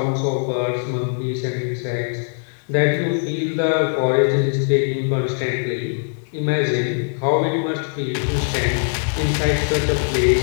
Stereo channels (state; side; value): silent; right; digital silence